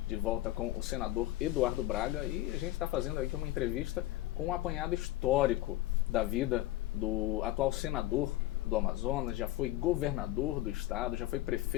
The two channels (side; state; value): right; quieter; 16.5 dB